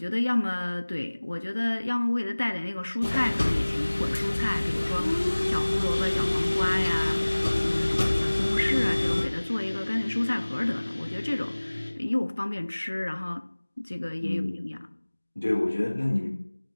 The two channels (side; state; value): both; inverted; correlation -1.00